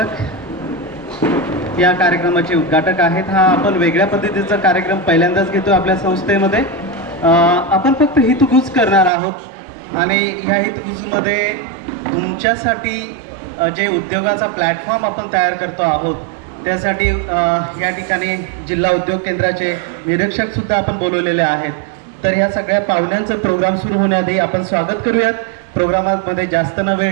या कार्यक्रमाचे उद्घाटक आहेत. हा आपण वेगळ्या पद्धतीचा कार्यक्रम पहिल्यांदाच घेतो आपल्या संस्थेमध्ये. आपण फक्त हितगुज करणार आहोत आणि ह्या हितगुजमध्ये तुमच्यासाठी जे उद्योगाचा प्लॅटफॉर्म आपण तयार करतो आहोत त्यासाठी या ठिकाणी जिल्हा उद्योग केंद्राचे निरीक्षक सुद्धा आपण बोलवलेले आहेत. तर ह्या सगळ्या पाहुण्यांचं प्रोग्राम सुरू होण्याआधी आपण स्वागत करूयात. प्रोग्रामामध्ये जास्त न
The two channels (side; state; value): left; drops out; at 9.1 s